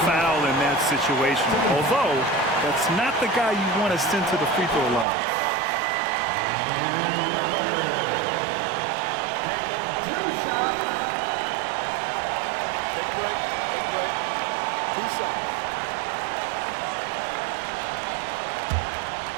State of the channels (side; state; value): left; drops out; at 5.1 s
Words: foul in that situation. Although, that's not the guy you want to send to the free throw line. Taking 2 shots. Take a break. Take a break. 2 shots.